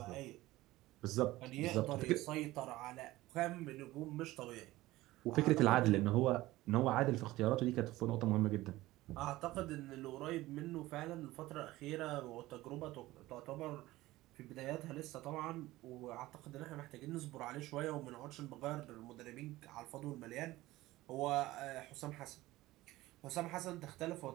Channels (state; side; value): quieter; left; 17.7 dB